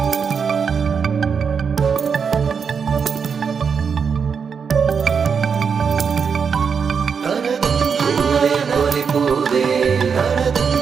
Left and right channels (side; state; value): left; quieter; 6.2 dB